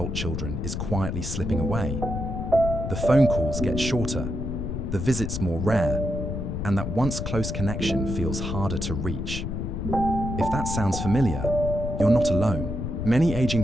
children is quietly slipping away? The phone calls get shorter, the visits more rare, and that once close connection feels harder to reach. If that sounds familiar, you're not alone. Many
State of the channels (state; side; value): noise; left; rumble, 3 dB below the sound